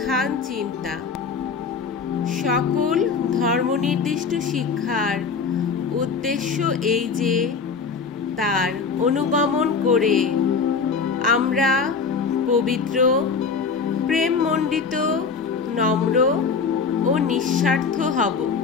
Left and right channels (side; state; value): right; quieter; 5.3 dB